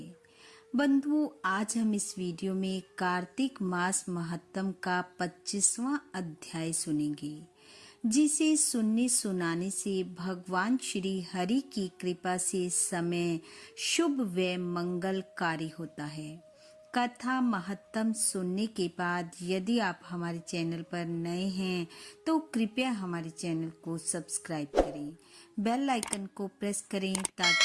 बंधुओं, आज हम इस वीडियो में कार्तिक मास महत्तम का 25वां अध्याय सुनेंगे, जिसे सुनने सुनाने से भगवान श्री हरि की कृपा से समय शुभ व मंगलकारी होता है। कथा महत्तम सुनने के बाद यदि आप हमारे चैनल पर नए हैं तो कृपया हमारे चैनल को सब्सक्राइब करें, बेल आइकन को प्रेस करें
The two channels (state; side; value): identical; both; correlation 1.00